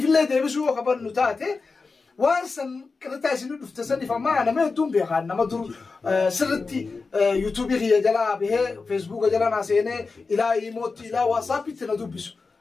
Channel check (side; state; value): right; quieter; 4.3 dB